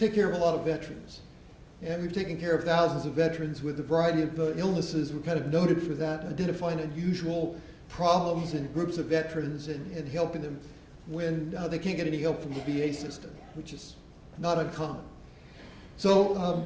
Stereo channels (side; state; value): both; identical; correlation 1.00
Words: care of a lot of veterans. And we've taken care of thousands of veterans with a variety of illnesses. We're kind of noted for that, identifying unusual problems in groups of veterans and helping them when they can't get any help from the VA system, which is not uncommon. So